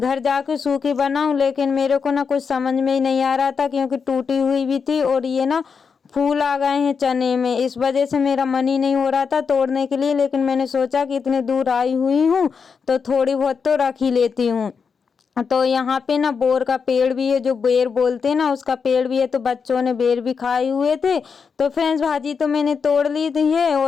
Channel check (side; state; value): right; quieter; 5.8 dB